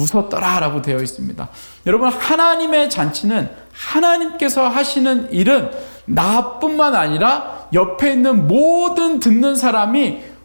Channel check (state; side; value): inverted; both; correlation -1.00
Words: 라고 되어 있습니다. 여러분 하나님의 잔치는, 하나님께서 하시는 일은 나뿐만 아니라 옆에 있는 모든 듣는 사람이